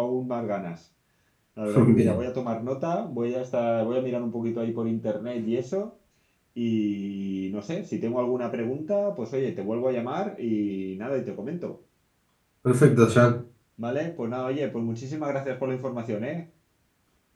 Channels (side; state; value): both; identical; correlation 1.00